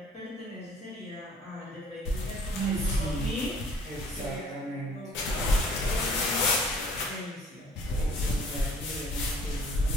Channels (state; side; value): normal; both; correlation 0.55